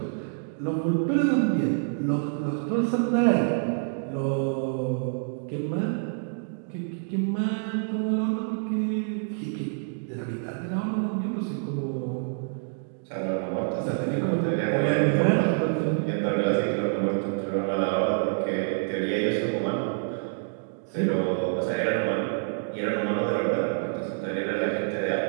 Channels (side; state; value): left; silent; digital silence